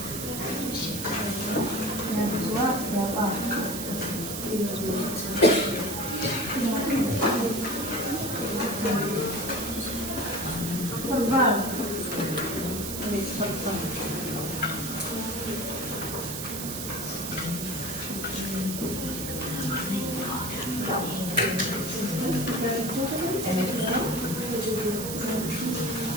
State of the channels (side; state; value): right; noise; hiss, 6 dB below the sound